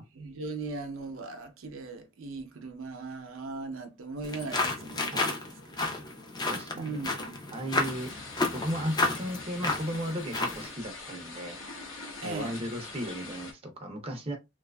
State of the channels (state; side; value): normal; both; correlation 0.26